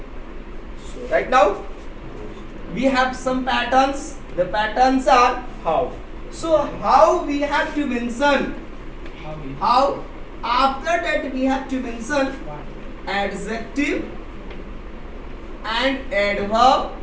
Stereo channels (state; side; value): identical; both; correlation 1.00